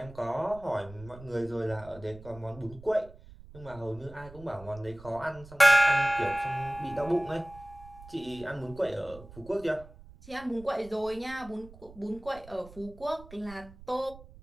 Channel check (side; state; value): right; noise; rumble, 19 dB below the sound